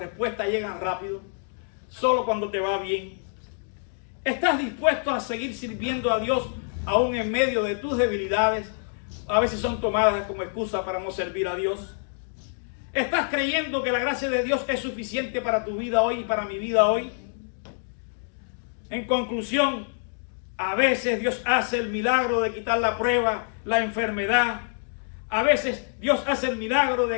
llegan rápido? ¿Solo cuando te va bien? ¿Estás dispuesto a seguir sirviendo a Dios aún en medio de tus debilidades? A veces son tomadas como excusa para no servir a Dios. ¿Estás creyendo que la gracia de Dios es suficiente para tu vida hoy y para mi vida hoy? En conclusión, a veces Dios hace el milagro de quitar la prueba, la enfermedad. A veces Dios hace el milagro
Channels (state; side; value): silent; right; digital silence